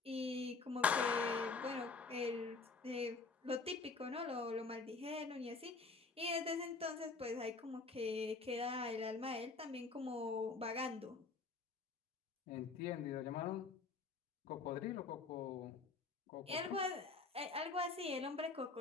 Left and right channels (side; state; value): right; quieter; 4.2 dB